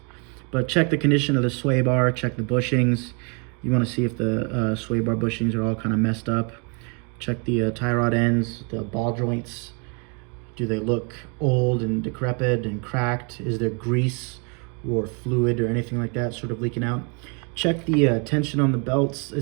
But check the condition of the sway bar, check the bushings. You want to see if the sway bar bushings are all kind of messed up. Check the tie rod ends, the ball joints. Do they look old and decrepit and cracked? Is there grease or fluid or anything like that sort of leaking out? Check the tension on the belts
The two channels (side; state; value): left; quieter; 35.3 dB